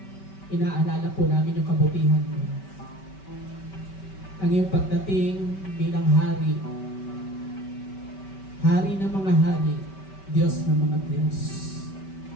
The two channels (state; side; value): late; right; 5.2 ms